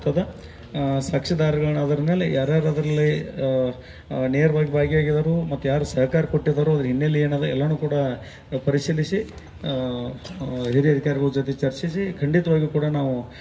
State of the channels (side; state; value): both; identical; correlation 1.00